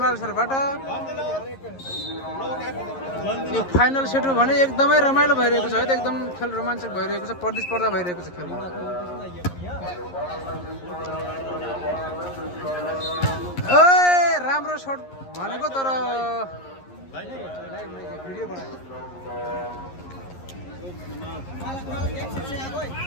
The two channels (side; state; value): right; late; 11 ms